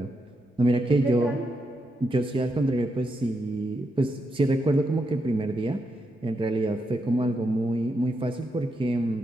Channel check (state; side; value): normal; both; correlation 0.83